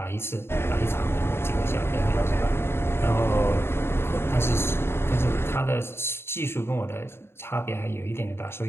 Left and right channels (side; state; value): right; late; 0.12 ms